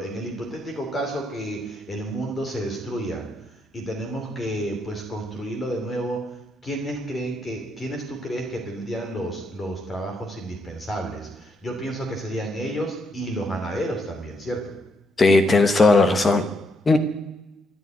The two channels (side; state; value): both; normal; correlation 0.77